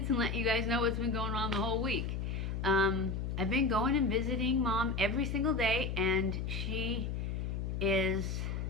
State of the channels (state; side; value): noise; left; hum, 2 dB below the sound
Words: and let you guys know what's been going on the whole week. I've been going and visiting Mom every single day and she's